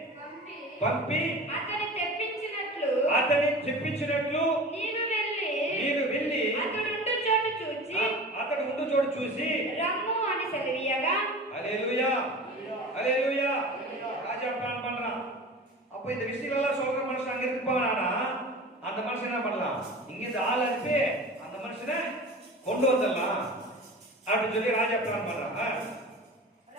పంపి అతని తెప్పించినట్లు నీవు వెళ్ళి అతడు ఉండు చోటు చూసి రమ్ము అని సెలవీయగా, హల్లెలూయా, హల్లెలూయా. ராஜா பிளான் பண்றான். அப்ப இந்த விஷயம் எல்லாம் சொல்ற மனுஷன் அங்க இருப்பானா, அந்த மனுஷன் என்ன பண்ணலாம்? இங்க இந்த ஆள் அனுப்பி அந்த மனுஷனை கொண்டு வந்துடலாம் அப்படின்னு சொல்லி ராஜா பிளான் பண்றான்.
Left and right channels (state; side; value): normal; both; correlation 0.36